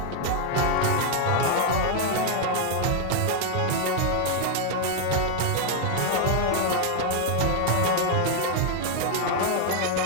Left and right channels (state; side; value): different; both; correlation 0.00